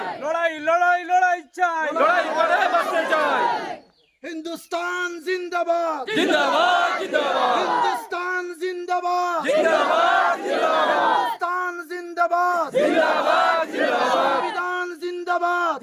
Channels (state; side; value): identical; both; correlation 1.00